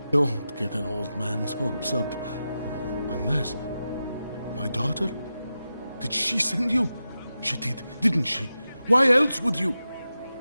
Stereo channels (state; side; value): inverted; both; correlation -0.91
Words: Don't get an old man's hopes up. Unless... My daughter? Did she send you? She did, didn't she? Why else would you?